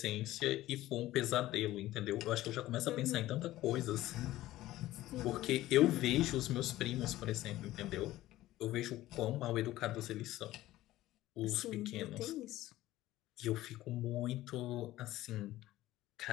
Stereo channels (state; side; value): quieter; right; 15.8 dB